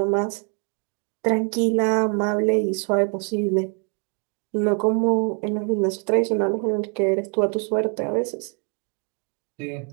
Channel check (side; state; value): left; quieter; 39.8 dB